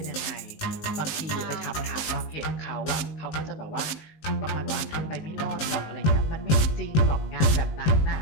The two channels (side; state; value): right; late; 19 ms